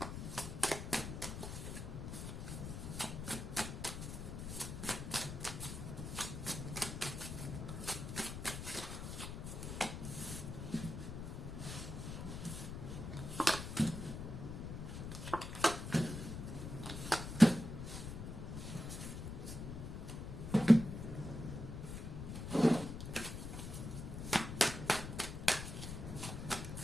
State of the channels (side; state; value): left; noise; rumble, 6 dB below the sound